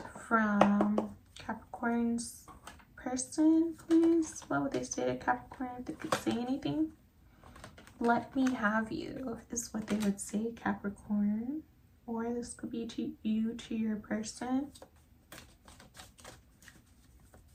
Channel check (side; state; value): both; identical; correlation 1.00